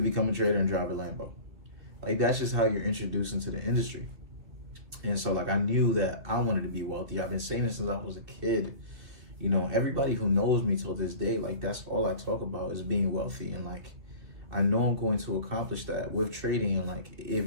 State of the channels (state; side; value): late; left; 2.8 ms